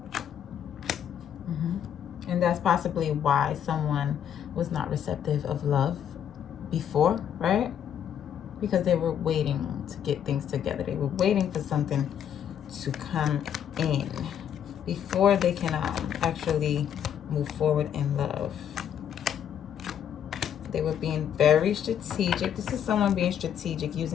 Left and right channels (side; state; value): right; quieter; 9.1 dB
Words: And that's possibly why someone was not receptive of love before, right? Because they were waiting to get things together. They were waiting for something to come in before they can actually move forward in love. They were being very strategic. This is someone being strategic,